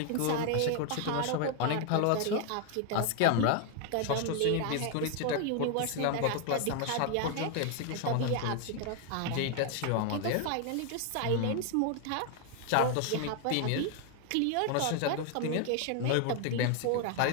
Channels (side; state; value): both; different; correlation 0.01